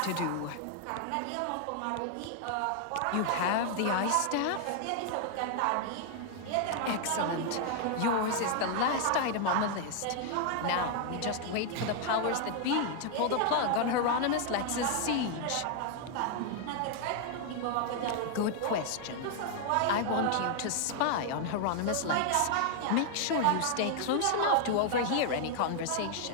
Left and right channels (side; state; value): both; different; correlation 0.00